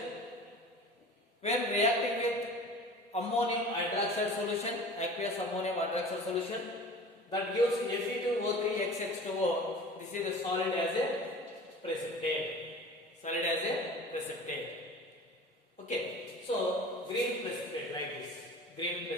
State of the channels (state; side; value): normal; both; correlation 0.40